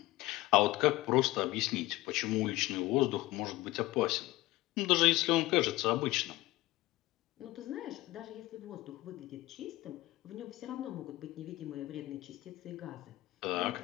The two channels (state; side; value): quieter; right; 18.3 dB